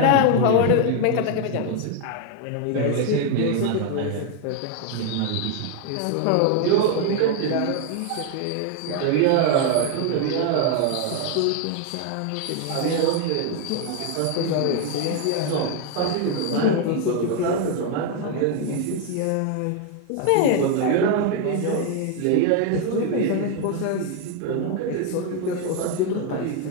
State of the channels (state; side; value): different; both; correlation 0.00